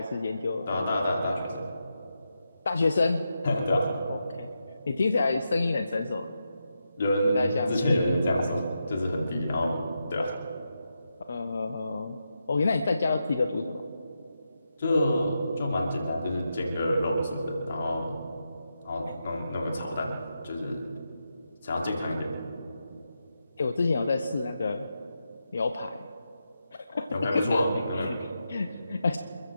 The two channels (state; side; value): inverted; both; correlation -0.86